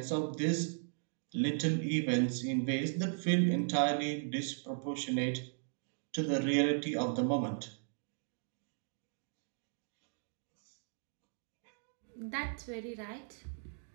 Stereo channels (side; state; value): left; silent; digital silence